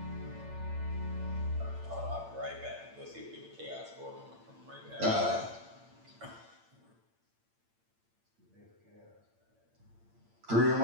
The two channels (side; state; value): left; late; 8.8 ms